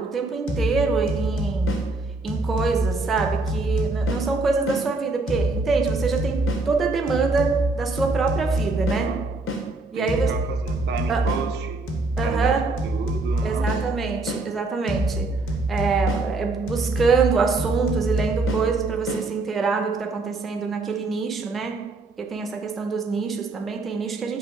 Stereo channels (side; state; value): left; quieter; 3.3 dB